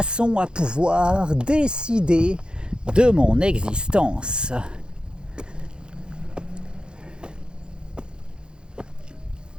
à pouvoir décider de mon existence.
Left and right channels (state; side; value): late; left; 0.049 ms